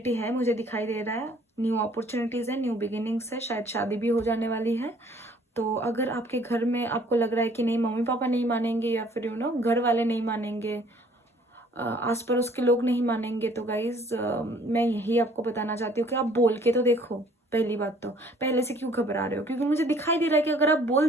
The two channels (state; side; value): normal; both; correlation 0.57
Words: है, मुझे दिखाई दे रहा है। न्यू अपॉर्चुनिटीज़ है, न्यू बिगिनिंग्स है, शायद शादी भी हो जाने वाली है। तो अगर आपके घर में आपको लग रहा है कि नहीं मम्मी पापा नहीं मानेंगे या फिर घर वाले नहीं मानेंगे, आस पड़ोस के लोग नहीं मानेंगे, तो गाइज मैं यही आपको बताना चाहती हूँ कि आप बोल के तो देखो। पहली बात तो पहले से क्यों घबरा रहे हो, क्योंकि मुझे दिखाई दे रहा है कि अगर आप बोल